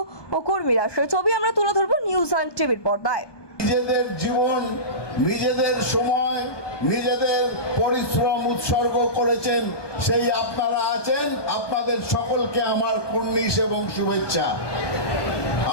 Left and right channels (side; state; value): right; late; 1.2 ms